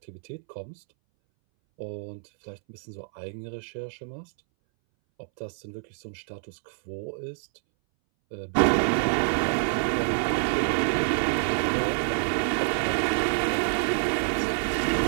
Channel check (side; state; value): left; silent; 60 dB below the other